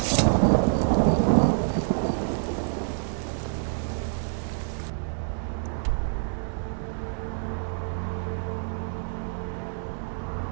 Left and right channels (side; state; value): left; silent; 60 dB below the other